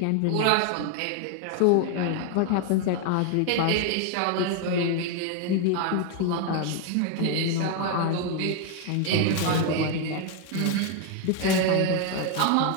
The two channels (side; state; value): both; different; correlation 0.01